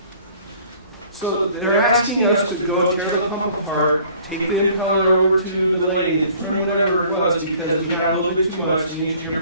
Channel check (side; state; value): both; inverted; correlation -0.54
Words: So they're asking us to go tear the pump apart, take the impeller over to the lathe, trim whatever it was because we had a little bit too much, the engineer